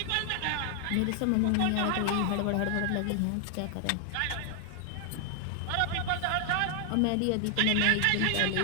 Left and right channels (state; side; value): different; both; correlation 0.00